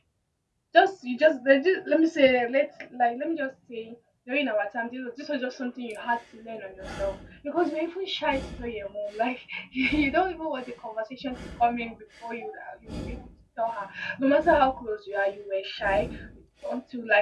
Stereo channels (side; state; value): both; identical; correlation 1.00